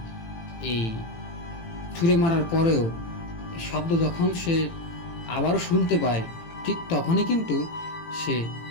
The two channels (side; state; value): right; late; 18 ms